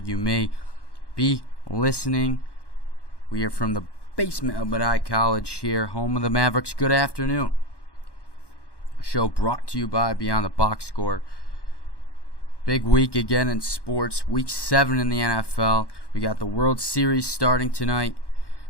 may be listening. We are from the basement of Medai College here, home of the Mavericks. Good afternoon. Show brought to you by Beyond the Box Score. Big week again in sports. Week 7 in the NFL. We got the World Series starting tonight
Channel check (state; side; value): late; right; 1.1 ms